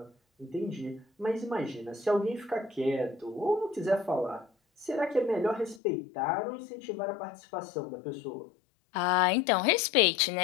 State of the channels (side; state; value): right; drops out; at 5.8 s